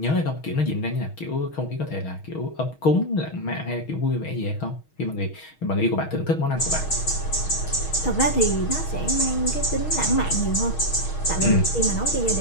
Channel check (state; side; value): late; right; 6.3 ms